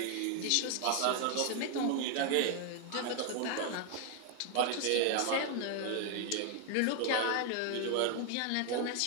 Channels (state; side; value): different; both; correlation 0.01